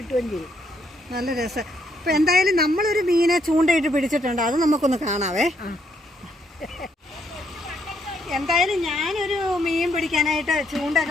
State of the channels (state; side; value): normal; both; correlation 0.73